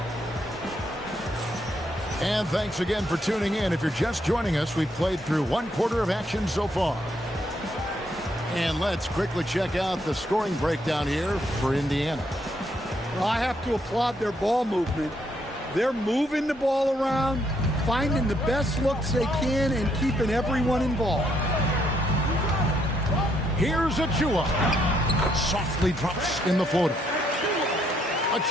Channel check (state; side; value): normal; both; correlation 0.73